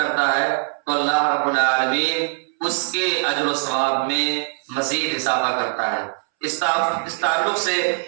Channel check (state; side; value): silent; left; 65 dB below the other